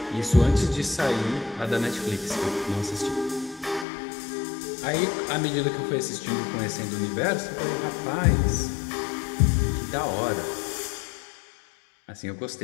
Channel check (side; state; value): right; drops out; at 3.9 s